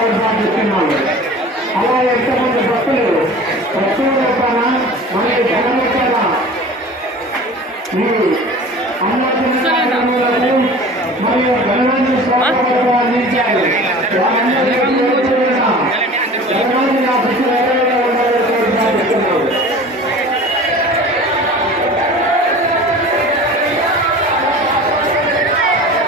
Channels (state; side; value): normal; both; correlation 0.40